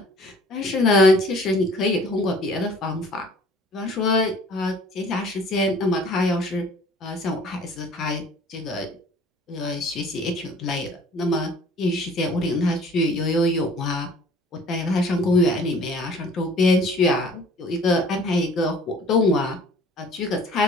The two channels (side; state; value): both; normal; correlation 0.51